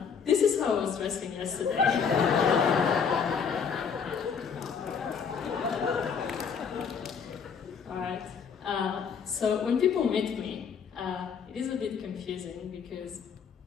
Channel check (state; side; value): quieter; right; 6.5 dB